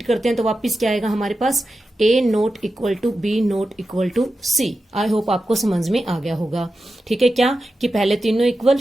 करते हैं तो वापिस क्या आएगा हमारे पास? A not equal to B not equal to C। I hope आपको समझ में आ गया होगा, ठीक है। क्या कि पहले तीनों इक्वल,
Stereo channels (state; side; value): normal; both; correlation 0.91